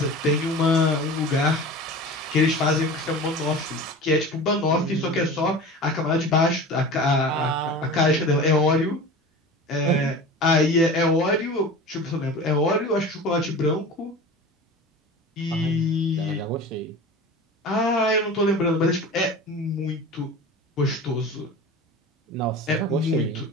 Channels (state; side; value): normal; both; correlation 0.35